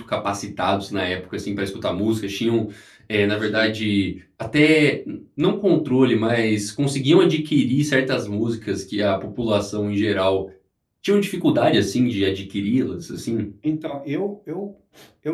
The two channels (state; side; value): identical; both; correlation 1.00